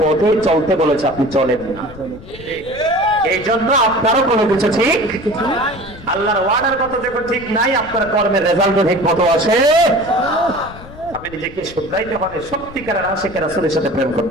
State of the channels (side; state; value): left; noise; rumble, 17 dB below the sound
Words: চলতে বলেছে, আপনি চলেন না। এই জন্য আপনারও কোনো কিছু ঠিক, আল্লাহর ওয়ার্ডার মতো যখন ঠিক নাই, আপনার কর্মের রেজাল্ট ঠিক মতো আসে। আপনি নিজেকে শুধরাইতে হবে, সত্যিকারের আশিকের রাসূলের সাথে প্রেম